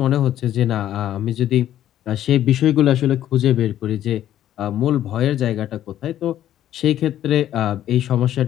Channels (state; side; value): quieter; right; 11.9 dB